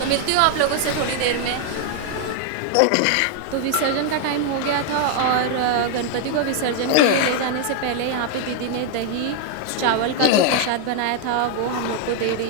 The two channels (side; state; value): both; different; correlation 0.00